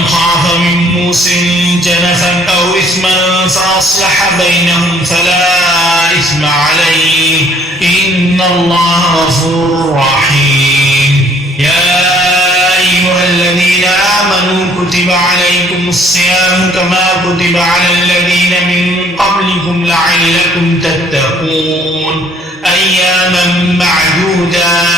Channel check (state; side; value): normal; both; correlation 0.60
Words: خاف من موص جنفا أو إثما فأصلح بينهم فلا إثم عليه إن الله غفور رحيم يا أيها الذين آمنوا كتب عليكم الصيام كما كتب على الذين من قبلكم لعلكم تتقون أياما